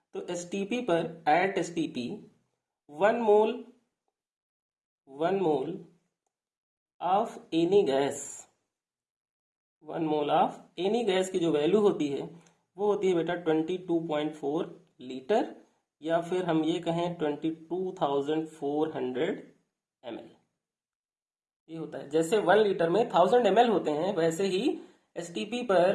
तो एसटीपी पर, at STP 1 mole of any gas, 1 mole of any gas की जो वैल्यू होती है वो होती है बेटा 22.4 लीटर, या फिर हम ये कहें 22,400 ml। ये होता है, जैसे 1 लीटर में 1000 ml होते हैं, वैसे ही एसटीपी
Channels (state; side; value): identical; both; correlation 1.00